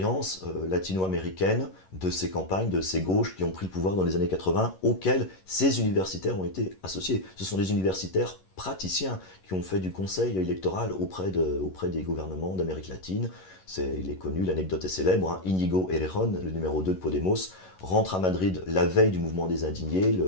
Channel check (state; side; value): late; right; 11 ms